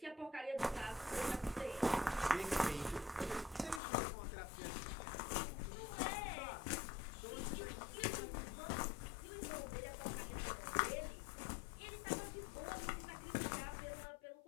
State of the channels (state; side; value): drops out; right; at 3.8 s